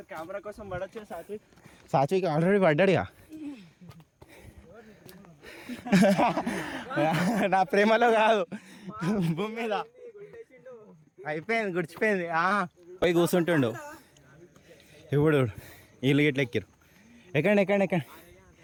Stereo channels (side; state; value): both; identical; correlation 1.00